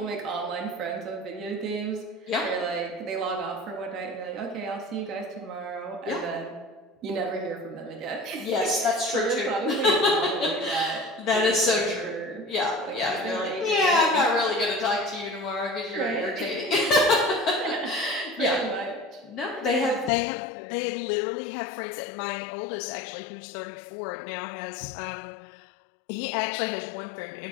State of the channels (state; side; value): drops out; right; at 20.1 s